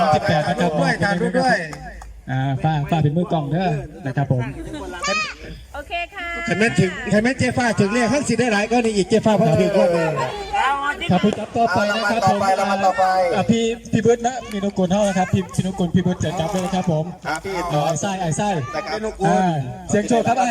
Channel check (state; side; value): identical; both; correlation 1.00